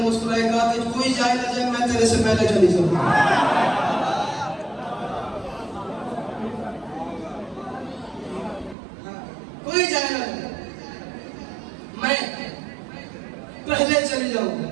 मुस्कुराया, कहा कि कोई जाए ना जाए, मैं तेरे से पहले चली जाऊंगा। कोई जाए ना जाए, मैं पहले चली जाऊंगा।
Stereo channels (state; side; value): drops out; left; at 8.8 s